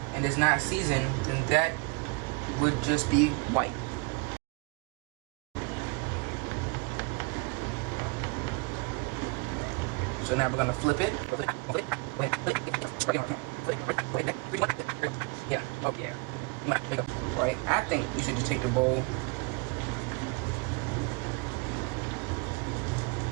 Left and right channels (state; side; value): quieter; left; 29.7 dB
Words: and it's not seasoned, then that would just be white. So now we're gonna flip it. Yeah. Oh yeah. Right, I think you should just take the bowl,